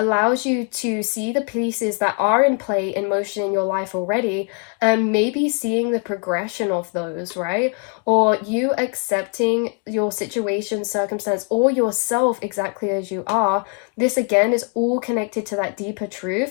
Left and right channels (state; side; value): quieter; right; 38.8 dB